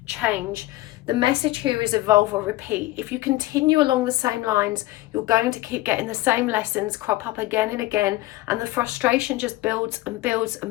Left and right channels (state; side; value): quieter; right; 18.1 dB